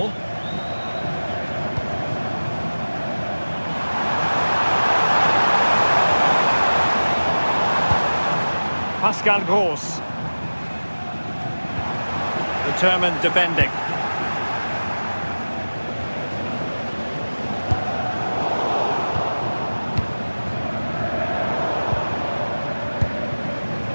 Pascal Gross. Determined defending.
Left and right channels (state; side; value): inverted; both; correlation -1.00